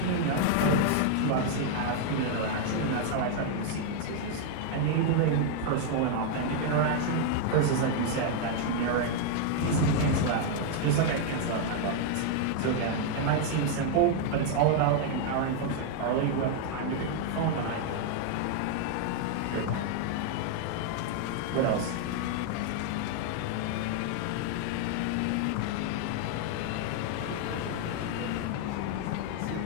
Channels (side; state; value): both; different; correlation 0.00